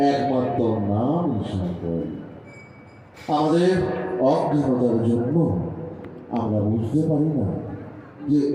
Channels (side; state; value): both; identical; correlation 1.00